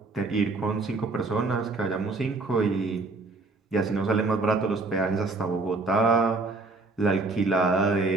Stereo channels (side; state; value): left; quieter; 3.4 dB